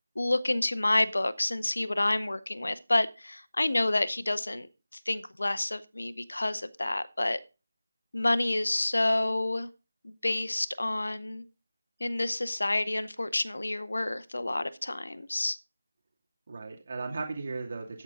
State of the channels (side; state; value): both; inverted; correlation -0.99